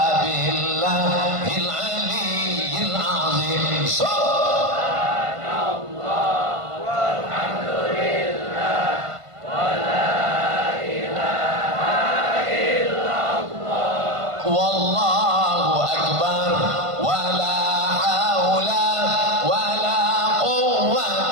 billahil aliyyil azim. Subhanallah walhamdulillah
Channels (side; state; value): left; late; 1.5 ms